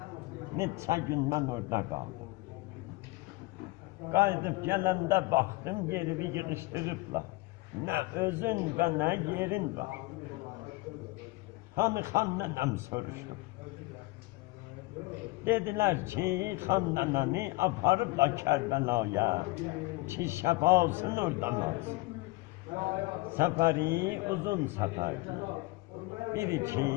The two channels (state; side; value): quieter; right; 22.4 dB